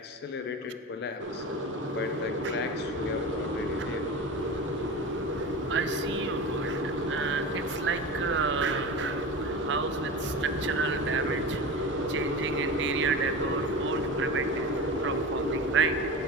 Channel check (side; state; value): both; normal; correlation 0.29